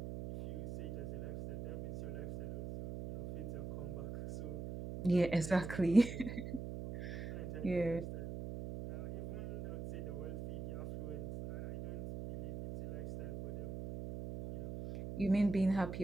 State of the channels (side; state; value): right; noise; hum, 7 dB below the sound